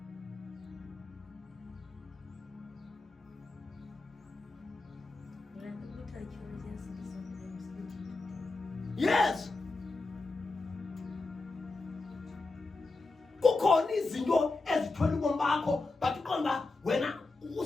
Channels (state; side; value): quieter; right; 3.5 dB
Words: Yes. Kukhona izinto ezithwele ubomi bakho, but uqonda wena